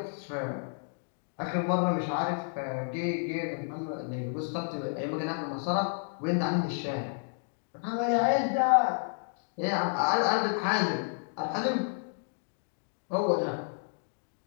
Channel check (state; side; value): silent; right; digital silence